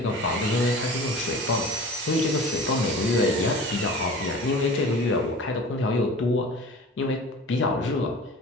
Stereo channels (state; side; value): normal; both; correlation 0.40